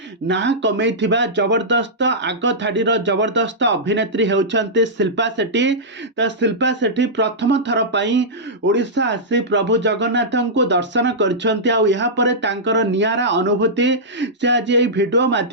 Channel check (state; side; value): normal; both; correlation -0.12